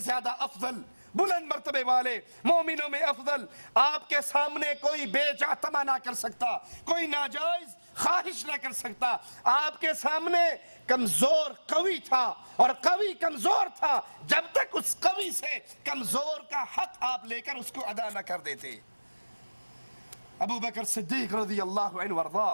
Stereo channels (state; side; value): inverted; both; correlation -1.00